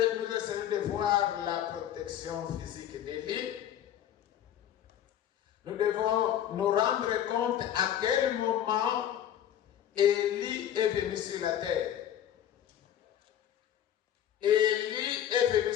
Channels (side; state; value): right; quieter; 10.6 dB